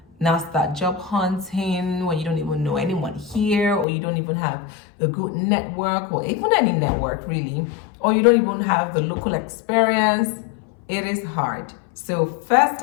now start job hunting when you don't even know anyone here, or you don't even have a good network, or even any network really, or you don't even have the local experience. It is hard. So first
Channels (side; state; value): right; drops out; at 3.9 s